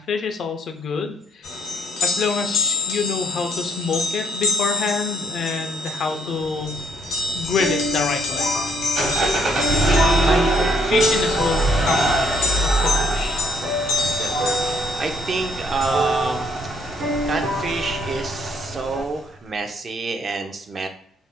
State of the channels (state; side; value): normal; both; correlation 0.65